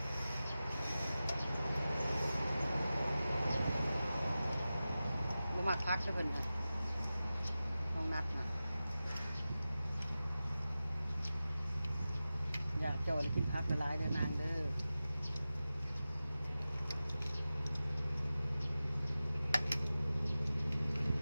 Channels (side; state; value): both; inverted; correlation -0.95